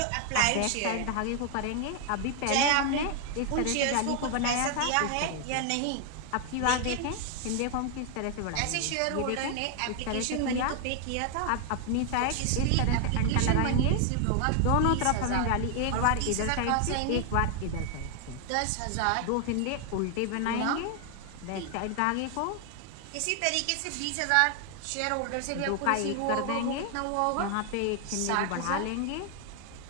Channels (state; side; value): different; both; correlation 0.00